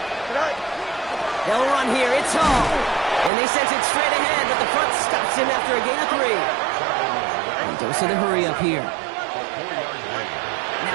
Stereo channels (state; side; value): drops out; left; at 3.3 s